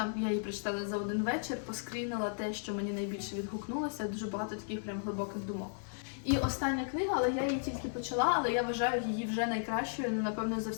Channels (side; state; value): right; silent; 54 dB below the other